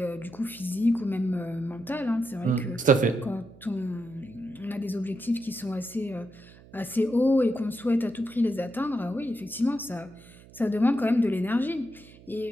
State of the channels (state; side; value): noise; right; hum, 22 dB below the sound